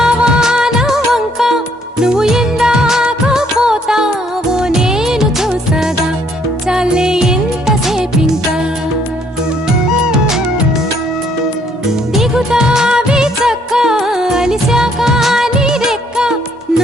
నా వంక, నువ్వు ఎందాక పోతావో నేను చూసగా, చాలే ఎంతసేపింకా. దిగుతావి చక్క అలిశాక నీ రెక్క,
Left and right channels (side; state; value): both; normal; correlation 0.66